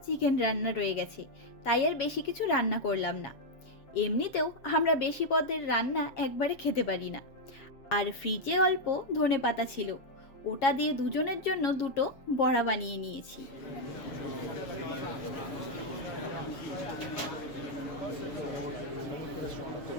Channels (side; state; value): right; late; 7.3 ms